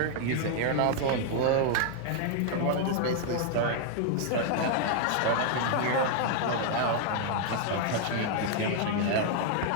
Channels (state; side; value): different; both; correlation 0.00